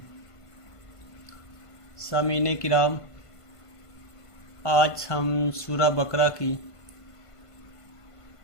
سامعین کرام، آج ہم سورہ بقرہ کی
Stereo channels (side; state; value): right; late; 1.5 ms